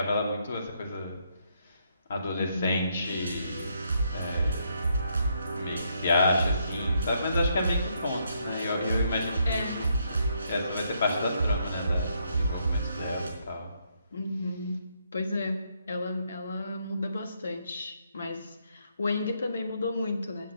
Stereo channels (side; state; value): both; inverted; correlation -0.75